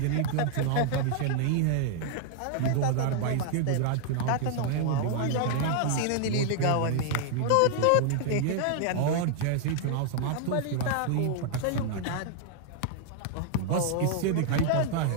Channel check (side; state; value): both; different; correlation -0.01